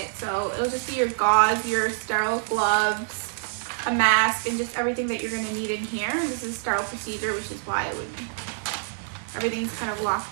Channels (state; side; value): silent; left; digital silence